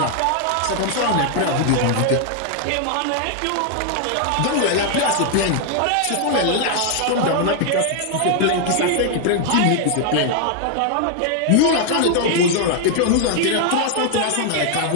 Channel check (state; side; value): different; both; correlation 0.00